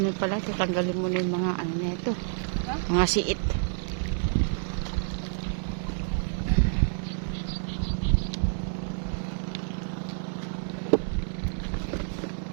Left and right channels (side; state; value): left; silent; digital silence